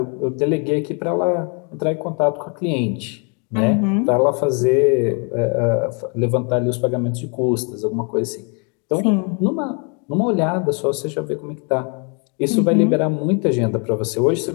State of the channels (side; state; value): right; quieter; 36.6 dB